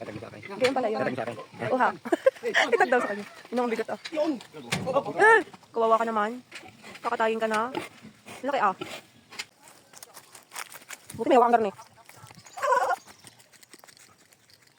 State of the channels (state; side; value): identical; both; correlation 1.00